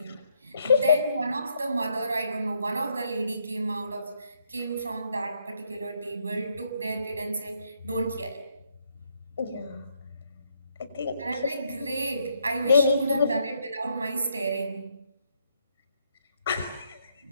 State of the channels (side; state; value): both; inverted; correlation -0.74